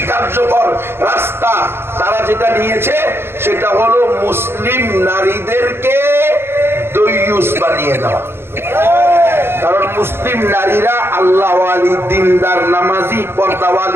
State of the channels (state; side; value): late; left; 0.11 ms